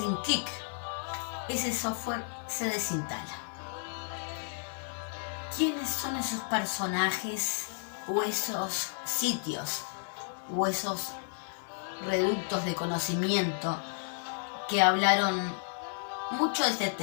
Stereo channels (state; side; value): silent; right; digital silence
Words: clic, ese software se desinstala. ¿Quiénes son esos personajes o esos sitios o esos reductos de conocimiento que hablaron mucho de este